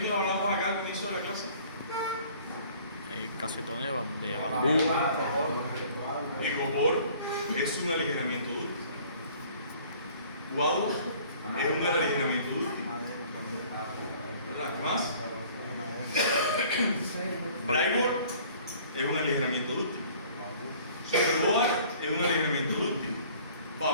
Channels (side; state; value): both; inverted; correlation -0.53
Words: hablamos acá al comienzo de la clase? Casetón de bambú. El copor es un aligeramiento dúctil. Guadua es un aligeramiento dúctil. ¿Verdad? ¿Qué más? Plywood es un aligeramiento dúctil. Superboard es un aligeramiento dúctil.